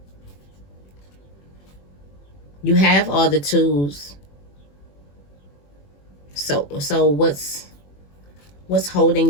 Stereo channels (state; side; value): late; right; 21 ms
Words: You have all the tools. So what's holding